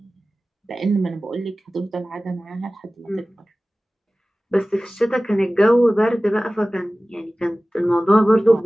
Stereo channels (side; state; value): both; normal; correlation 0.97